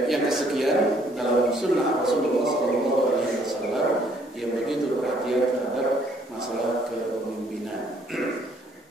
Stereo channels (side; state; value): both; normal; correlation 0.64